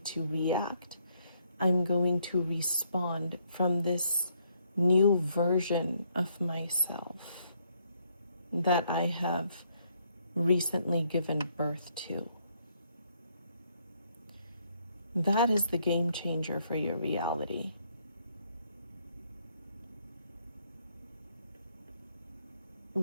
to react. I'm going to respond from this new version of myself that I have recently given birth to. That is the game changer for your reality.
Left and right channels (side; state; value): both; inverted; correlation -0.71